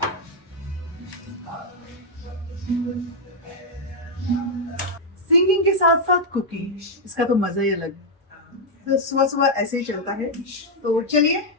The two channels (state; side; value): normal; both; correlation -0.02